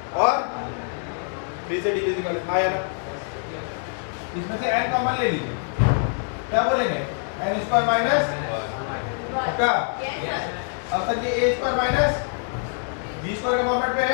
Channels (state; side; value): silent; right; 62 dB below the other